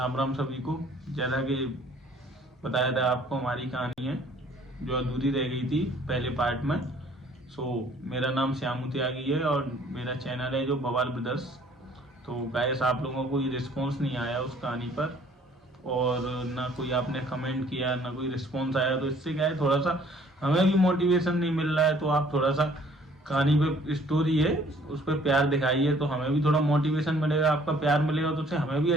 राम सभी को। जैसा कि बताया था आपको, हमारी कहानी है जो अधूरी रह गई थी पहले पार्ट में। मेरा नाम श्यामू त्यागी है और मेरा चैनल है जो बवाल ब्रदर्स। तो गाइस, आप लोगों को ये रिस्पॉन्स नहीं आया उस कहानी पर, और ना कोई आपने कमेंट किया, ना कोई रिस्पॉन्स आया। तो इससे क्या है, थोड़ा सा हमें भी मोटिवेशन नहीं मिल रहा है। तो आप थोड़ा सा कहानी पे, स्टोरी है उस पर प्यार दिखाइए, तो हमें भी थोड़ा मोटिवेशन मिलेगा। आपका प्यार मिलेगा तो उससे हमें भी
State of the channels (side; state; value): both; normal; correlation 0.57